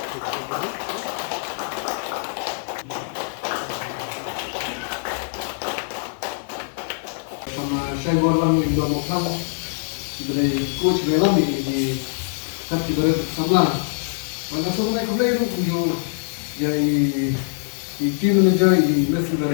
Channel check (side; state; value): right; silent; digital silence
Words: Sama saya orang Indo Mokam, dari coach Burom di kat di sebelah. Mana semua nak play tu punya jadi team manager di Messi